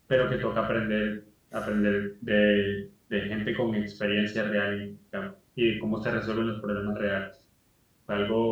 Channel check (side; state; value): both; identical; correlation 1.00